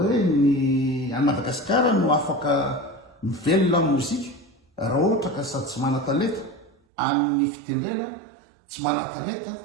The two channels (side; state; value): left; drops out; at 6.8 s